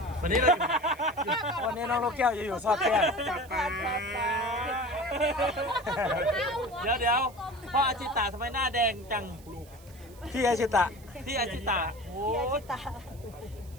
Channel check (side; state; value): right; noise; hiss, 24 dB below the sound